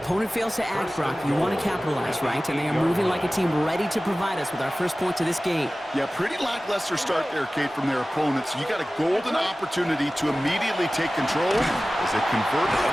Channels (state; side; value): normal; both; correlation 0.97